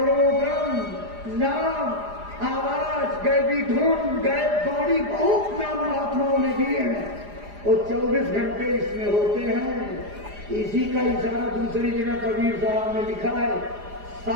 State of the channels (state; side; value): late; left; 4.9 ms